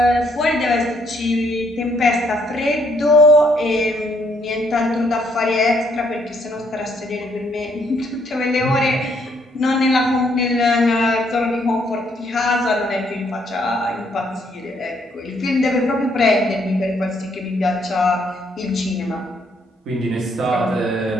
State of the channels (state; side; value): normal; both; correlation 0.70